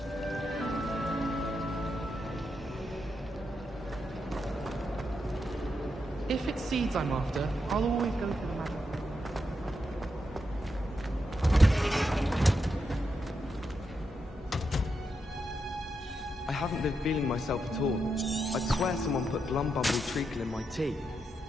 If it's seeds I'm after, I'll always go for the magic. I haven't been feeling myself at all. I'd swear someone put Glumbumble treacle in my tea.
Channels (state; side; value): normal; both; correlation 0.84